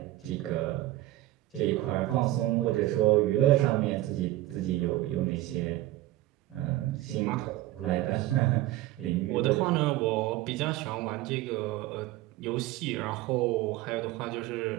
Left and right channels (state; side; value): quieter; left; 16.2 dB